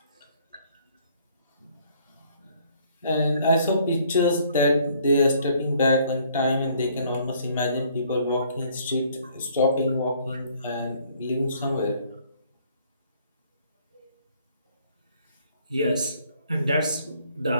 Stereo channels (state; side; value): inverted; both; correlation -0.62